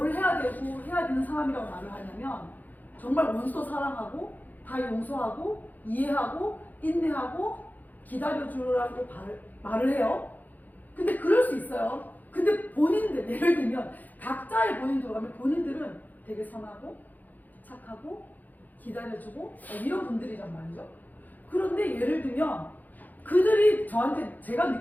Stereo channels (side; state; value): right; late; 0.083 ms